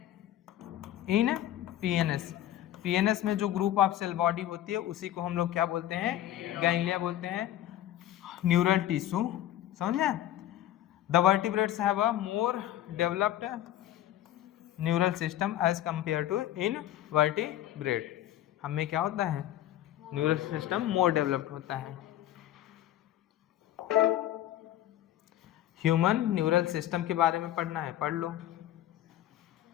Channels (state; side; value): quieter; right; 12.8 dB